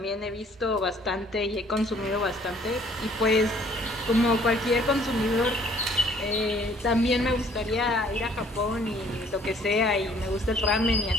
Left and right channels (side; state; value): both; normal; correlation 0.58